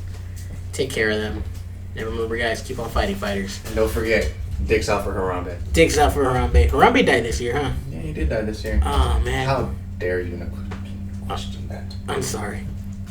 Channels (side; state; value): both; identical; correlation 1.00